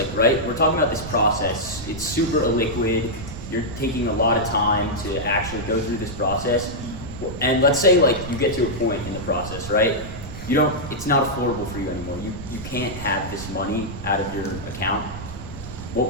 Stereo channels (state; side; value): noise; right; rumble, 11 dB below the sound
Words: right, we're talking about this process. It's super illiquid. You're taking a lot of time to actually go through this process. And let's say like you get to a point in the process, right? It's not affordable for you anymore. You can't have this money out of your account. What